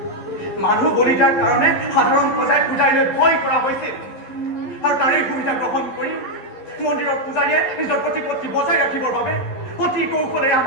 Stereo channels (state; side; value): late; right; 11 ms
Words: মানুহ বলি দিয়াৰ কাৰণে সাধাৰণ প্ৰজাই পূজাৰীলৈ ভয় কৰা হৈছিল আৰু তাৰেই সুবিধা গ্ৰহণ কৰি মন্দিৰৰ পূজাৰীয়ে নিজৰ প্ৰতিপত্তি বজাই ৰাখিবৰ বাবে অতি কৌশলেৰে